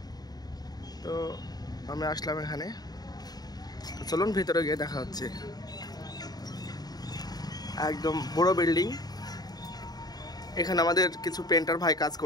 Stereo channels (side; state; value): right; late; 0.19 ms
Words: তো আমি আসলাম এখানে, তো চলুন ভিতরে গিয়ে দেখা হচ্ছে। একদম বড় বিল্ডিং। এখানে আমাদের কিছু পেন্টার ভাই কাজ